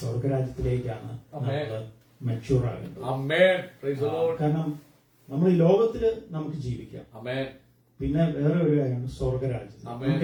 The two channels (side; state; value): both; identical; correlation 1.00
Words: സ്വർഗരാജ്യത്തിലേക്കാണ് നമ്മൾ മെച്യൂർ ആകേണ്ടത്. ആമേൻ. Praise the Lord. കാരണം നമ്മൾ ഈ ലോകത്തില് നമുക്ക് ജീവിക്കാം. ആമേൻ. പിന്നെ വേറെ ഒരു കാര്യമാണ് സ്വർഗരാജ്യം. ആമേൻ.